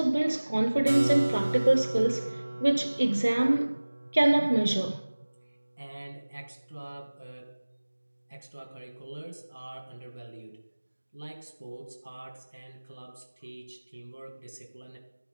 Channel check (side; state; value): both; inverted; correlation -1.00